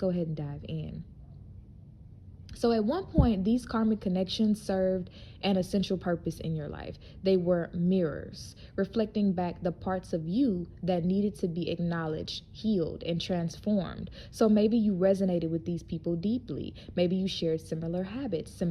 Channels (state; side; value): identical; both; correlation 1.00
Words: ahead and dive in. So at one point, these karmic connections served an essential purpose in your life. They were mirrors, reflecting back the parts of you that needed to be acknowledged, healed, and transformed. So maybe you resonated with these people deeply. Maybe you shared similar habits,